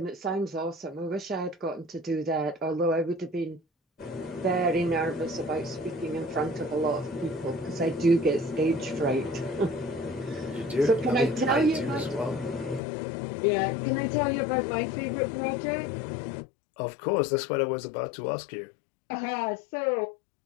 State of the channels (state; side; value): drops out; right; at 12.8 s